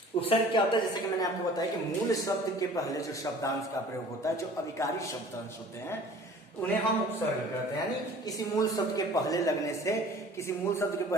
उपसर्ग क्या होता है, जैसे कि मैंने आपको बताया कि मूल शब्द के पहले जो शब्दांश का प्रयोग होता है, जो अविकारी शब्दांश होते हैं उन्हें हम उपसर्ग कहते हैं। यानी किसी मूल शब्द के पहले लगने से, किसी मूल शब्द के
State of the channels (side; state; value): both; normal; correlation 0.47